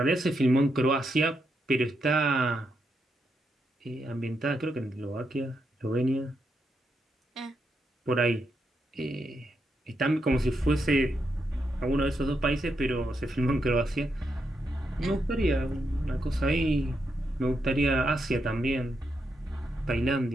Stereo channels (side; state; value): both; normal; correlation 0.82